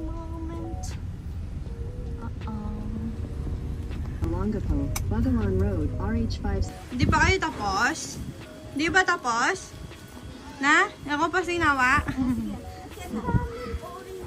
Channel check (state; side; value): identical; both; correlation 1.00